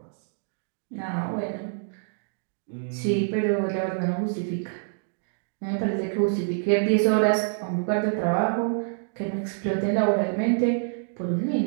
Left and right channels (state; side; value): silent; left; digital silence